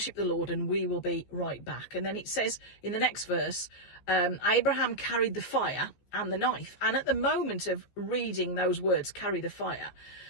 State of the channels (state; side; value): late; right; 14 ms